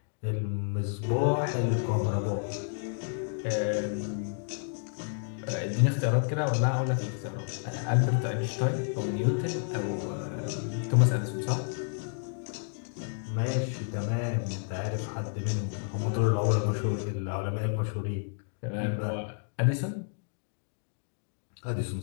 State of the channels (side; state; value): right; silent; digital silence